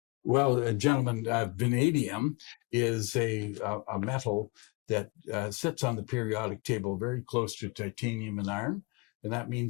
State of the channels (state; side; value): quieter; right; 28.4 dB